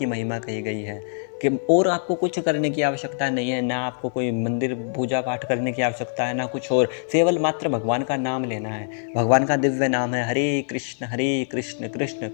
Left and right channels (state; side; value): silent; right; 55 dB below the other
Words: महिमा कही गई है कि और आपको कुछ करने की आवश्यकता नहीं है, ना आपको कोई मंदिर पूजा पाठ करने की आवश्यकता है, ना कुछ और, केवल मात्र भगवान का नाम लेना है। भगवान का दिव्य नाम है हरे कृष्ण कृष्ण